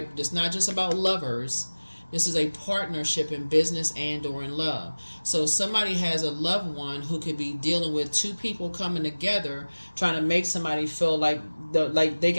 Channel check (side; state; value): both; inverted; correlation -1.00